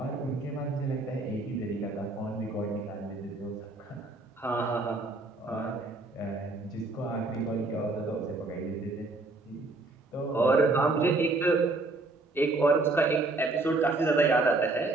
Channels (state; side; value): quieter; left; 3.2 dB